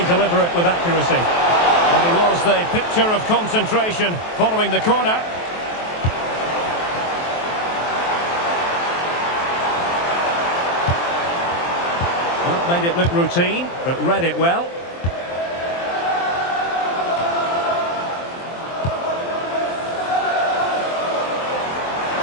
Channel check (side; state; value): right; late; 23 ms